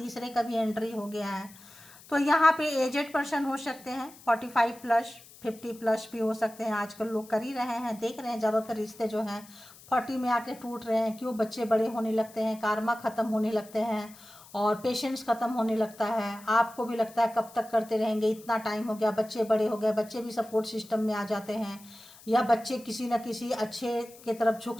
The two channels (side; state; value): left; noise; hiss, 21 dB below the sound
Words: का भी एंट्री हो गया है। तो यहाँ पे एजेड पर्सन हो सकते हैं, 45 प्लस 50 प्लस भी हो सकते हैं। आजकल लोग कर ही रहे हैं, देख रहे हैं ज़्यादातर रिश्ते जो हैं 40 में आके टूट रहे हैं। क्यों? बच्चे बड़े होने लगते हैं, कारमा ख़त्म होने लगते हैं और पेशेंस ख़त्म होने लगता है। आपको भी लगता है कब तक करते रहेंगे, इतना टाइम हो गया, बच्चे बड़े हो गए, बच्चे भी सपोर्ट सिस्टम में आ जाते हैं, या बच्चे किसी न किसी अच्छे के तरफ झुक